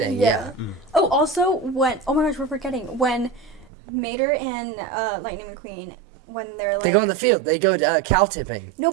Yeah. Oh, also when oh my gosh, we're forgetting when Mater and Lightning McQueen when they're like They go in the field. They go cow tipping. no,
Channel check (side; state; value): left; drops out; at 3.7 s